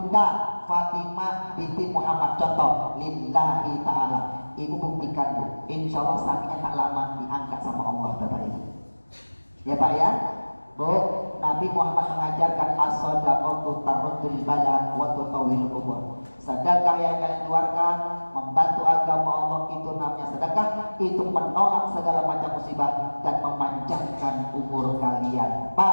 Fatimah binti Muhammad. Contoh, lillahi ta'ala. Ibu buktikan bu, insya Allah sakitnya tak lama diangkat sama Allah bapak ibu. Ya pak ya, bu. Nabi Muhammad mengajarkan as-shadaqatu tarudul bala wa tutawwilul umur. Sedekah yang kalian keluarkan membantu agama Allah itu namanya sedekah, itu menolak segala macam musibah dan memanjangkan umur kalian.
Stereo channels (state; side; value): inverted; both; correlation -1.00